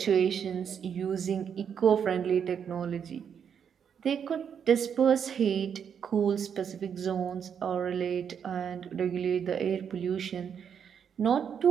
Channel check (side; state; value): left; quieter; 7.7 dB